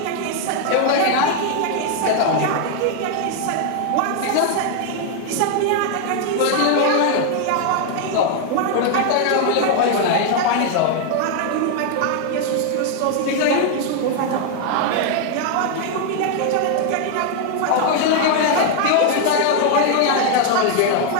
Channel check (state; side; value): different; both; correlation 0.00